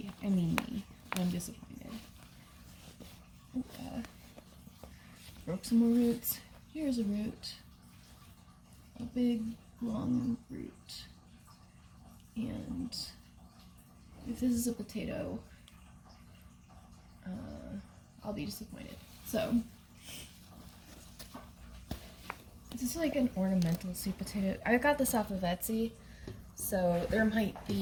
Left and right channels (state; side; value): identical; both; correlation 1.00